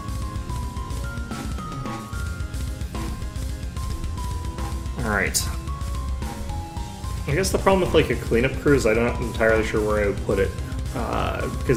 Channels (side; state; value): both; identical; correlation 1.00